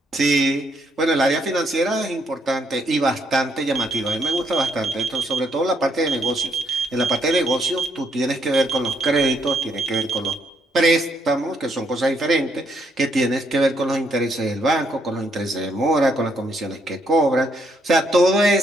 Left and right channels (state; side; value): normal; both; correlation 0.73